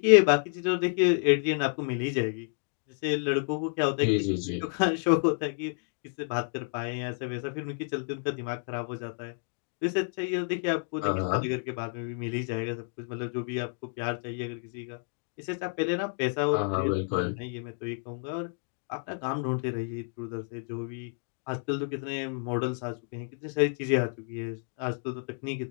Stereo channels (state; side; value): silent; right; 56 dB below the other